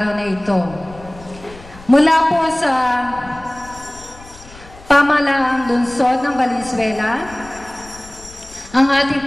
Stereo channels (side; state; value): left; noise; rumble, 20 dB below the sound